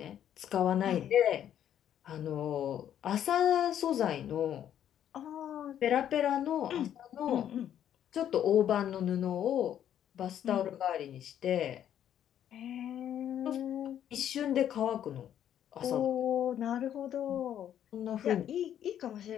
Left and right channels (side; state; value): right; quieter; 10.3 dB